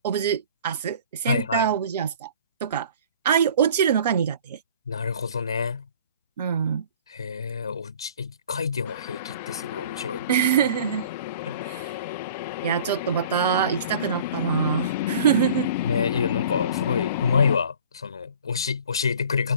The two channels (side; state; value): both; inverted; correlation -0.47